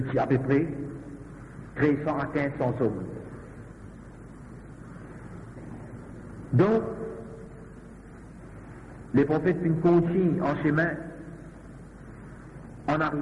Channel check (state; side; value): identical; both; correlation 1.00